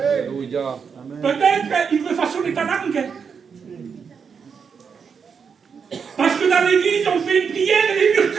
Peut-être il veut façonner ta langue. Parce que dans l'église, on fait une prière et les murs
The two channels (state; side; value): quieter; left; 6.3 dB